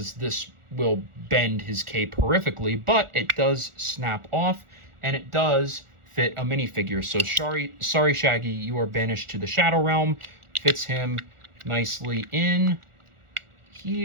this will bend his cape horrifically, but it does snap off, and it does fit a minifigure. So sorry, Shaggy, you are banished to the Shadow Realm. Fits him nicely in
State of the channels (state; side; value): late; left; 1.4 ms